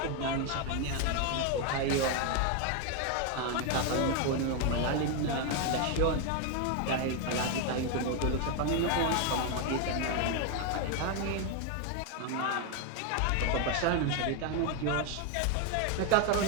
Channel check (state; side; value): different; both; correlation 0.01